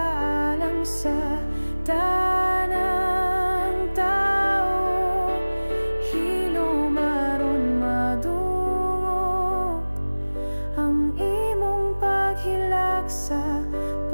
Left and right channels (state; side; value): inverted; both; correlation -1.00